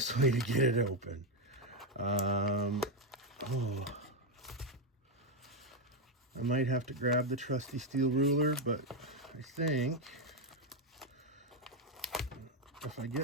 way to get it open. I might have to grab the trusty steel ruler, but I think if I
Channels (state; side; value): normal; both; correlation 0.05